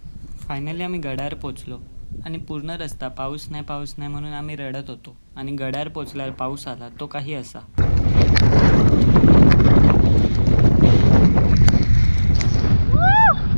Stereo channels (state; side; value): inverted; both; correlation -1.00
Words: फायनली आम्ही गडावर पोचलो आणि पूर्ण रस्ता पाऊस नाही म्हणून आम्ही रडत होतो. आणि गडावर पोचल्यावर पाऊस आला, तो काही असा.